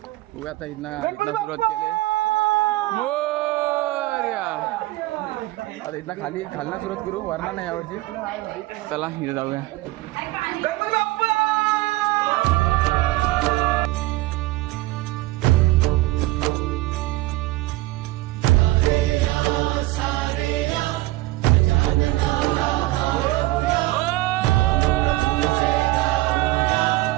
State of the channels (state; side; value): quieter; left; 18.9 dB